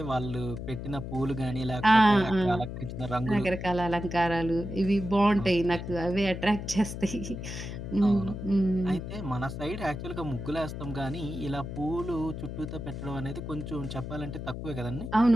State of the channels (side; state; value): left; noise; hum, 7 dB below the sound